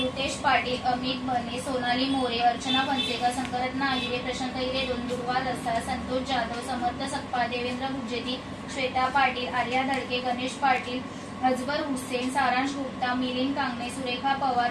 पाटील, अमित बने, सोनाली मोरे, अर्चना फणसेकर, शंकररत्ना आहिरे, प्रशांत हिरे, दुर्वा रसाळ, संतोष जाधव, समर्थ सकपाळ, देवेंद्र गुज्जेती, श्वेता पाटील, आर्या धडके, गणेश पाटील, अजबर हुसेन, सारांश गुप्ता, मिलिंद कांगणे, सुरेखा पवार,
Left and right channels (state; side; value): identical; both; correlation 1.00